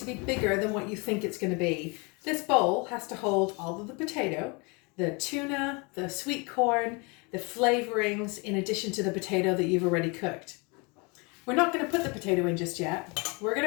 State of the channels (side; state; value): right; quieter; 30.0 dB